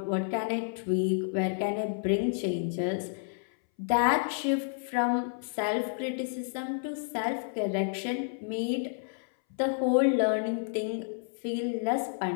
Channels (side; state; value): right; silent; 58 dB below the other